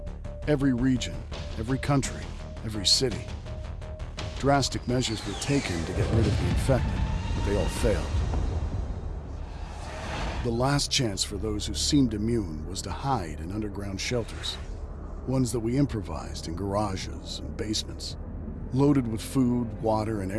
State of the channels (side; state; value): both; identical; correlation 1.00